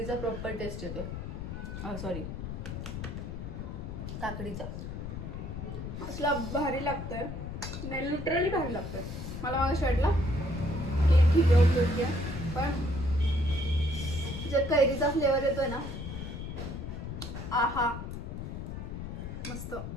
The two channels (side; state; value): left; noise; rumble, 7 dB below the sound